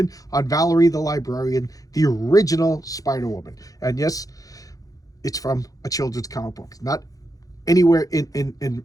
on Valerie the Librarian, the original Spider-Woman. And yes, it's from a children's comic book, not anywhere in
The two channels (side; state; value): right; late; 0.17 ms